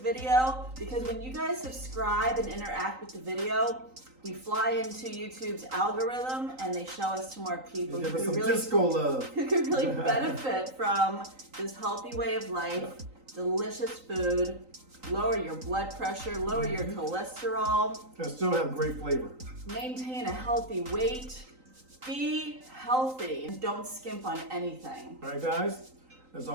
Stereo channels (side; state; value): left; late; 3.9 ms